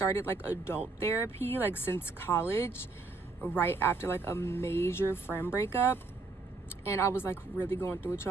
like adult therapy like since college, right after like a major friend breakup. And I was like really going through it,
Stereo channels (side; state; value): left; quieter; 3.7 dB